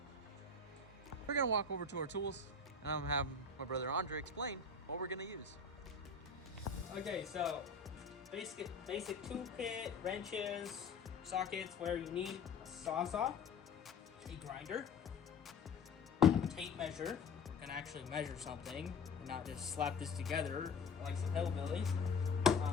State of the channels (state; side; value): quieter; right; 4.3 dB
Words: We're gonna walk over to our tools, and I'm gonna have my brother Andre explain what we're gonna use. Okay, so basic tool kit, wrenches, sockets, where you need a sawzall, a grinder, tape measure. We're gonna actually measure something and not just slap this together like some hillbillies.